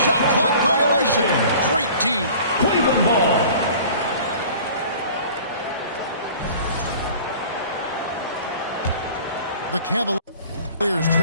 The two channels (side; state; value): both; inverted; correlation -0.45